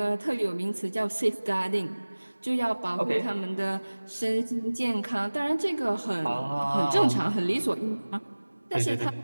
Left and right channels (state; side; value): inverted; both; correlation -1.00